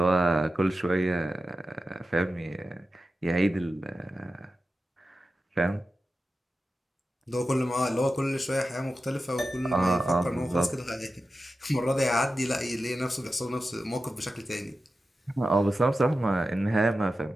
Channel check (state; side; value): normal; both; correlation 0.92